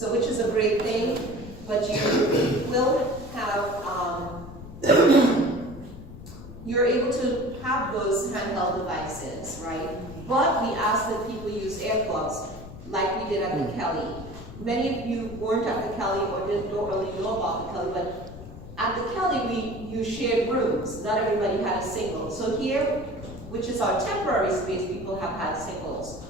which is a great thing. But you will have, you're able to have those handheld devices, right? But we ask that people use earplugs, like we did at the Kelly. Many of you weren't at the Kelly or don't really know about the Kelly, but at the Kelly we shared rooms. Not everybody had a single. So here, which is our temporary space, people have had singles,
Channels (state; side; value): noise; left; rumble, 14 dB below the sound